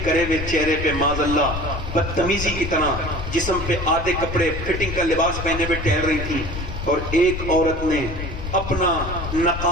کرے ہوئے چہرے پہ معاذ اللہ بدتمیزی کی طرح جسم پہ آدھے کپڑے فٹنگ کا لباس پہنے ہوئے ٹہل رہی تھی. اور ایک عورت نے اپنا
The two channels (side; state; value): left; noise; rumble, 7 dB below the sound